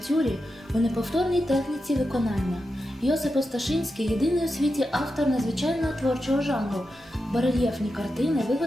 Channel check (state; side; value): normal; both; correlation 0.89